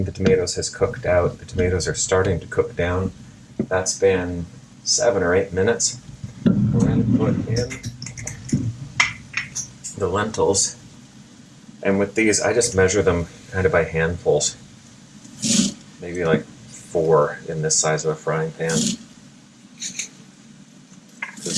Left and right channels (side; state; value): both; identical; correlation 1.00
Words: the tomatoes has cooked out. The tomatoes are starting to cook down. That's been 7 or 8 minutes. We're going to put in the lentils. And with these, I just measure them kind of by handfuls. Maybe like 4 in this size of a frying pan.